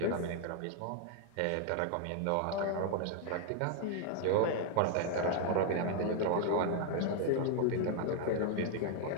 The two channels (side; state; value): both; different; correlation 0.00